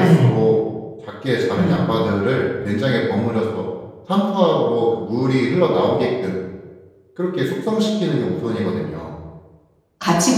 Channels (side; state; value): both; identical; correlation 1.00